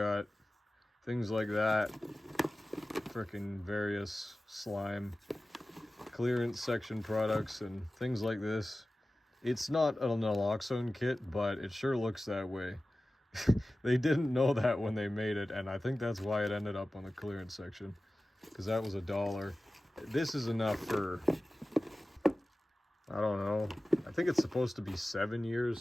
things like that, freaking various slime clearance section products and things like this. It's not an naloxone kit, but it sure looks that way. They didn't know that when they made it, and I think that's why it ended up on the clearance section, because that was $1. This is enough for, I don't know, I think it's supposed to be 7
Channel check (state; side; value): normal; both; correlation 0.96